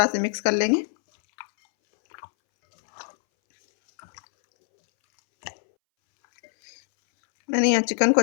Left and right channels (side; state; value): right; silent; 63 dB below the other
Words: से मिक्स कर लेंगे। मैंने यहाँ चिकन को